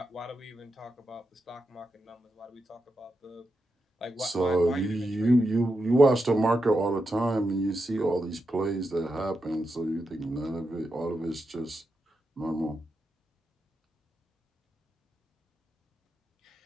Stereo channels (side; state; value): both; normal; correlation 0.87